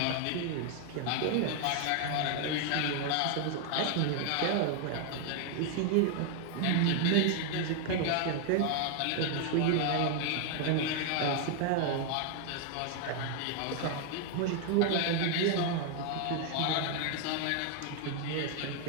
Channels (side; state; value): both; different; correlation 0.00